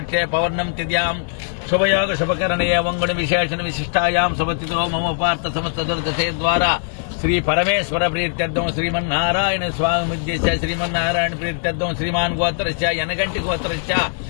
పౌర్ణం తిథ్యాం శుభయోగ శుభకరణే వంగుణ విశేషణ విశిష్టాయాం శుభతిథో మమ పార్థ సమస్త దుర్దశే ద్వారా శ్రీ పరమేశ్వర ప్రీత్యర్థం శ్రీమన్నారాయణ స్వామి ఉద్దేశ్య శ్రీమన్నారాయణ ప్రీత్యర్థం శ్రీమాన్ గోత్రస్య యనగంటి గోత్రస్య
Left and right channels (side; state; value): right; silent; 66 dB below the other